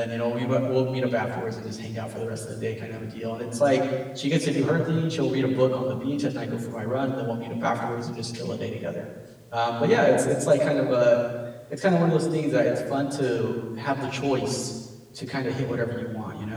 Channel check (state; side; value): identical; both; correlation 1.00